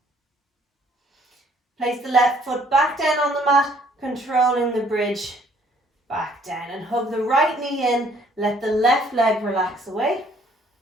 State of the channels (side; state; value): both; normal; correlation 0.62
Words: Place the left foot back down on the mat, controlling the bridge back down. And hug the right knee in. Let the left leg relax away.